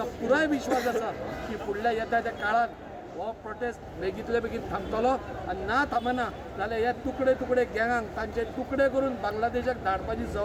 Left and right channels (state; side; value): identical; both; correlation 1.00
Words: पुराय विश्वास आसा की फुडल्या येता त्या काळात हो प्रोटेस्ट बेगींतले बेगीन थांबतलो, आनी ना थांबना जाल्यार हे तुकडे तुकडे गँगांक तांचे तुकडे करून बांगलादेशाक धाडपाची